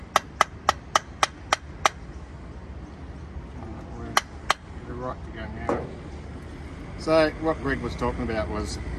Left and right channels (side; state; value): both; identical; correlation 1.00